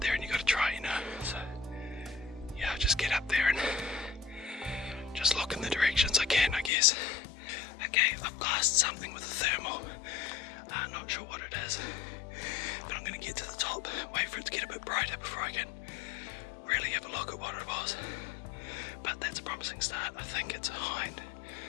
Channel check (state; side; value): drops out; right; at 6.7 s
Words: there and you gotta try, you know. So yeah, I'll just get up there and just look in the directions I can, I guess. Okay, I've glassed something with a thermal. Not sure what it is, but I'm gonna get to the top, wait for it to get a bit brighter before I can really have a look at what it was. But that's a promising start. I think it's a hind,